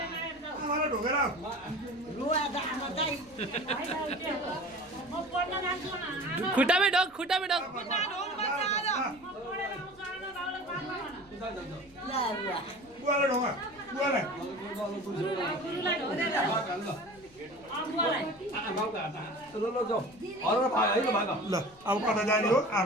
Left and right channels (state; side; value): noise; left; rumble, 27 dB below the sound